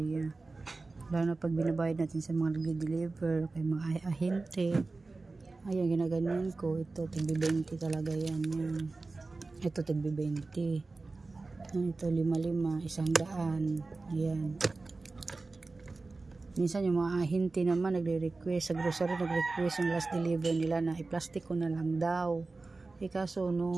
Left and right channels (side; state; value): left; quieter; 3.6 dB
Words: Lalo na pag binabayad natin sa mga nagde-deliver, kay mga ahente. Ayan, ginaganyan ko. Ito, tigbi 20 talaga yan. Yan. Ito, tigbi 20. Ito, 5-5, 100. Ayan. Minsan yung mga ahente naman nagre-request sa grocery, nagre-request yung last deliver nila na i-plastic ko na lang daw. Kaso